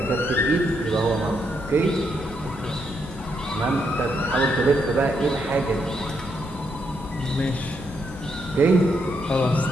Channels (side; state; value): both; normal; correlation 0.78